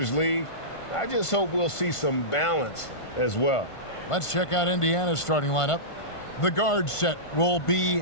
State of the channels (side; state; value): right; late; 1.5 ms